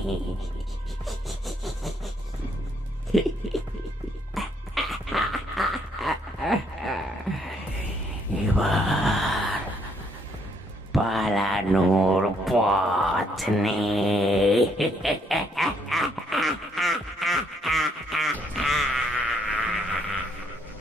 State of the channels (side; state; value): both; normal; correlation 0.70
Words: এবার পালানোর পথ নেই।